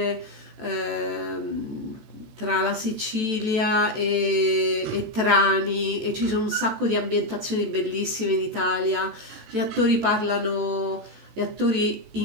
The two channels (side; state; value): left; late; 14 ms